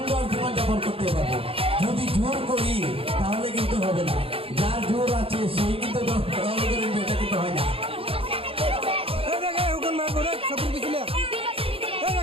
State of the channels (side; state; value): left; late; 0.27 ms